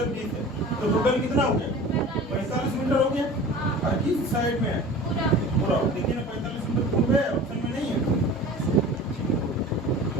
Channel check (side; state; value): both; normal; correlation 0.39